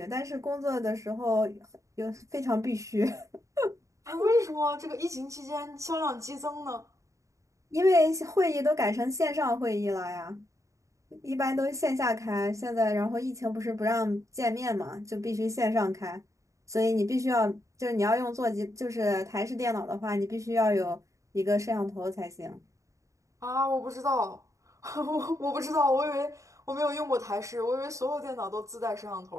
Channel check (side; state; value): left; late; 0.15 ms